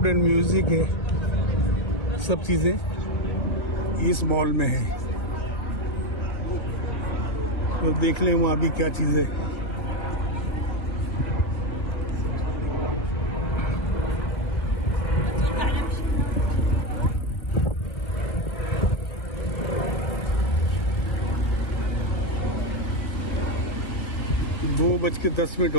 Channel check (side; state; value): right; late; 1.6 ms